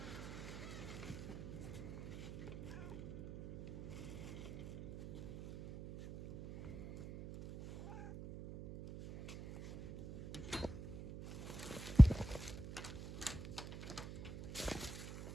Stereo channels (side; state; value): right; noise; hum, 11 dB below the sound